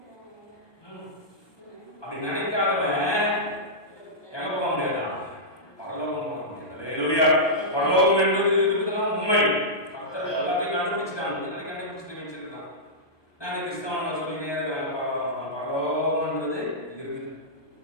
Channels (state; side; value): late; right; 1.2 ms